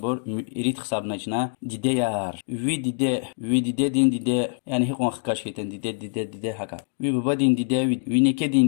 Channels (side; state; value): right; silent; digital silence